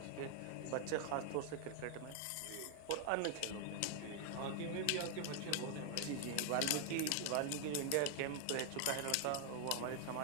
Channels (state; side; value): different; both; correlation 0.00